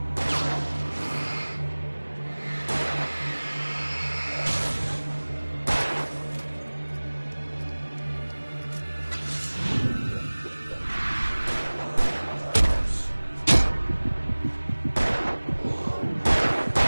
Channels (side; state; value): both; inverted; correlation -1.00